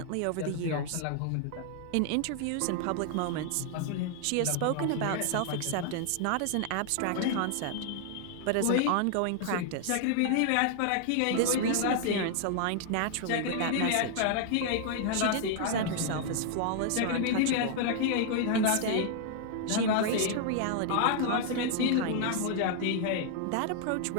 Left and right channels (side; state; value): both; different; correlation 0.00